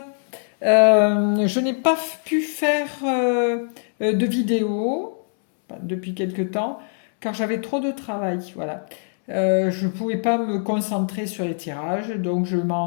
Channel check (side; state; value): right; silent; 63 dB below the other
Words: Je n'ai pas pu faire de vidéo depuis quelque temps car j'avais trop de travail. Voilà. Je ne pouvais pas me concentrer sur les tirages, donc je